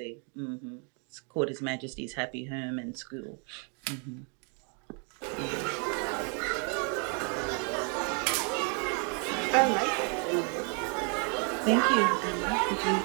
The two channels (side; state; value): left; quieter; 39.0 dB